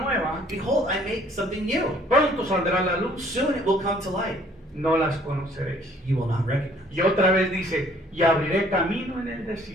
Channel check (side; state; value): both; normal; correlation 0.59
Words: Behold, I make something new. pronto saldrá la luz, Soon it will come to light. no las conoceréis. You will not recognize. Y otra vez dice, y abriré camino en el